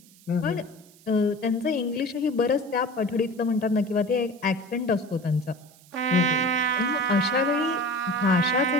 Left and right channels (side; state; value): right; noise; hiss, 26 dB below the sound